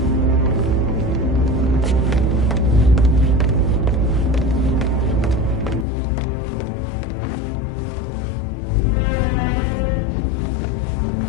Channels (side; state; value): right; drops out; at 5.9 s